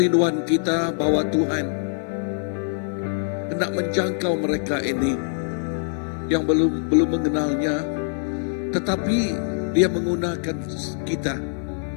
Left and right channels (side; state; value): right; silent; 59 dB below the other